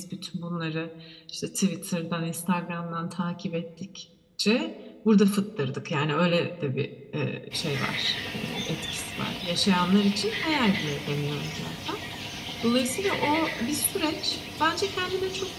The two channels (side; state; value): both; identical; correlation 1.00